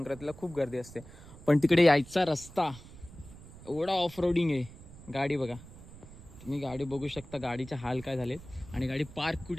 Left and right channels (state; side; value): noise; right; rumble, 18 dB below the sound